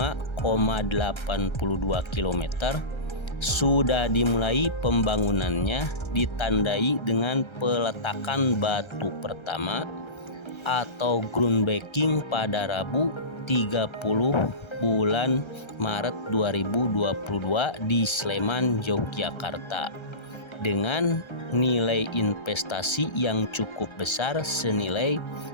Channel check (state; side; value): late; right; 1.3 ms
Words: km sudah dimulai pembangunannya, ditandai dengan peletakan batu pertama atau groundbreaking pada Rabu 30 bulan Maret 2022 di Sleman, Yogyakarta dengan nilai investasi yang cukup besar senilai